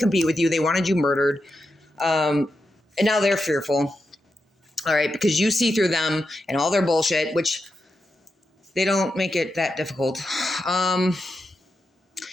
with you. They wanted you murdered. And now they're fearful. All right, because you see through them and all their bullshit, which they don't make it that difficult.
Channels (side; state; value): both; normal; correlation 0.87